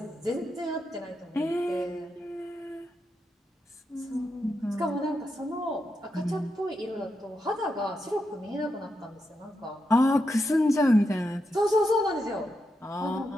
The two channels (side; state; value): both; normal; correlation 0.85